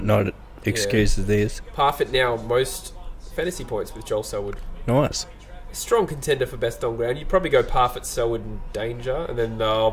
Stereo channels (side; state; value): both; identical; correlation 1.00